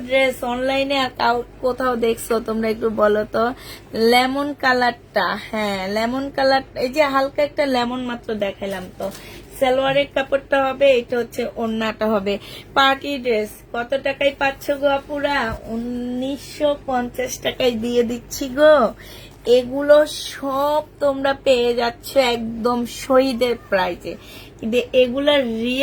ড্রেস অনলাইনে আর কোথাও দেখছো তোমরা? একটু বলো তো। লেমন কালারটা, হ্যাঁ লেমন কালার, এই যে হালকা একটা লেমন মাত্র দেখাইলাম তো। সালোয়ারের কাপড়টা হবে, এটা হচ্ছে ওড়নাটা হবে। পার্টি ড্রেস কত টাকায় পাচ্ছ গো আপুরা? 1950 টাকায় দিয়ে দিচ্ছি গো। এগুলো সব তোমরা পেয়ে যাচ্ছ একদম শহীদের প্রাইজে, কিন্তু এগুলা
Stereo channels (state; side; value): identical; both; correlation 1.00